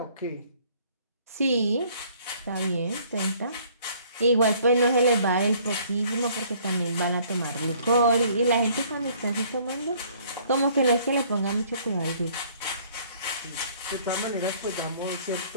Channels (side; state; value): both; inverted; correlation -0.58